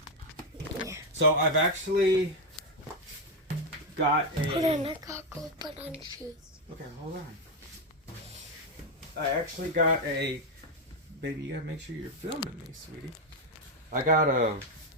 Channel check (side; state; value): both; normal; correlation 0.05